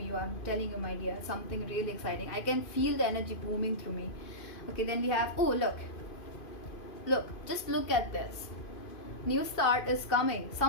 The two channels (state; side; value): late; right; 2.5 ms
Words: I'm telling you, my dear, something really exciting. I can feel the energy booming through me. Okay, then we have, oh, look, just look at this. New start is coming.